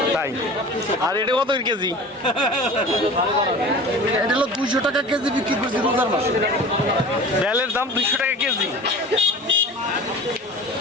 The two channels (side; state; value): both; normal; correlation 0.38